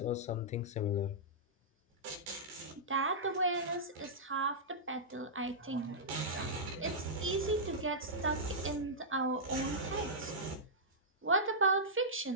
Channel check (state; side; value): normal; both; correlation -0.13